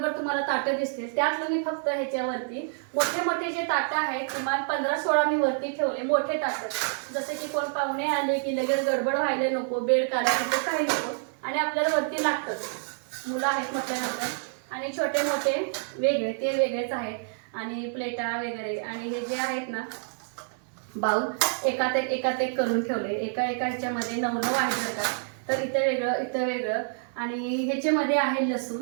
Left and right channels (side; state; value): left; silent; 60 dB below the other